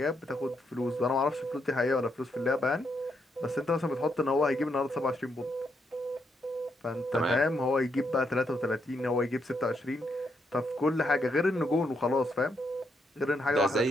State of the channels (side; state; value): both; normal; correlation 0.78